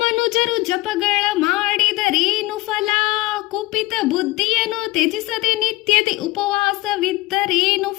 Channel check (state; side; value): quieter; right; 20.0 dB